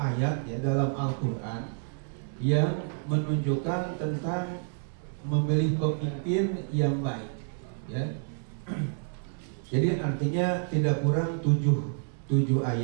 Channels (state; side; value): silent; left; digital silence